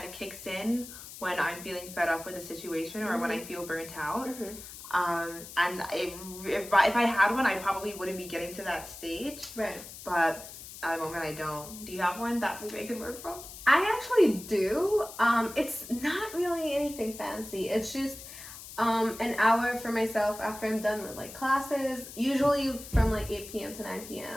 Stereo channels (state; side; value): noise; left; hiss, 14 dB below the sound